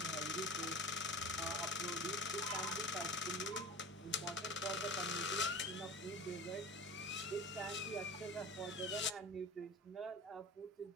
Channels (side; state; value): both; normal; correlation 0.35